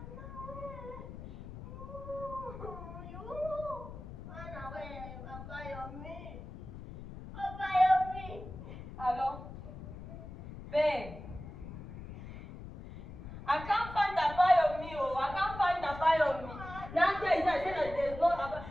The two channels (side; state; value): left; noise; rumble, 12 dB below the sound